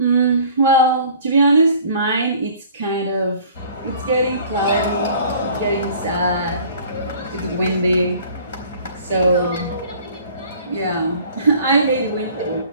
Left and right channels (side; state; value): both; inverted; correlation -0.50